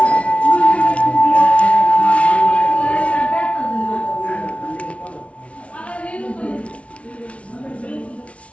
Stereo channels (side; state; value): right; late; 0.063 ms